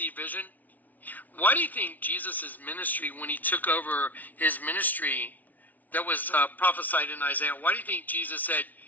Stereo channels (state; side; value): late; right; 0.077 ms